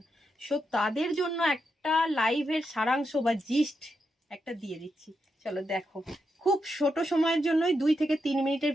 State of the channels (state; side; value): normal; both; correlation 0.84